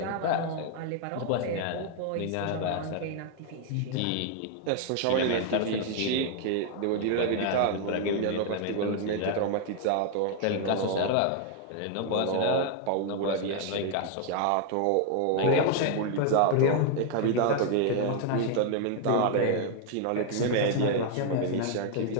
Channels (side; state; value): both; different; correlation 0.00